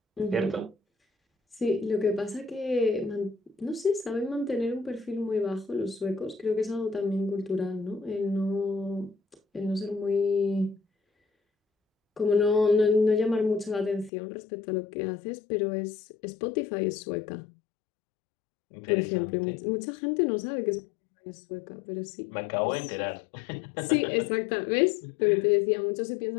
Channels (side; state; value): right; drops out; at 14.1 s